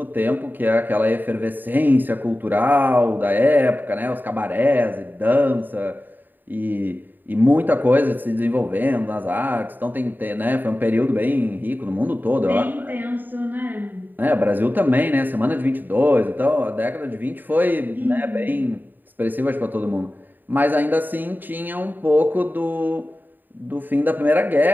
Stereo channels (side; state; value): left; late; 0.090 ms